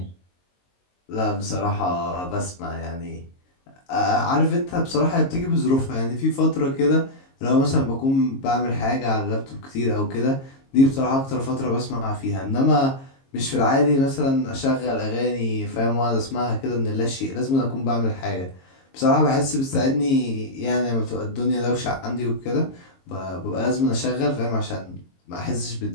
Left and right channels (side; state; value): right; late; 22 ms